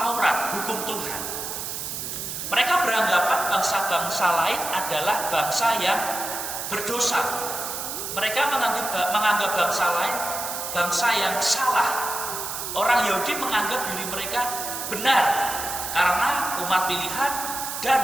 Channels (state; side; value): noise; right; hiss, 5 dB below the sound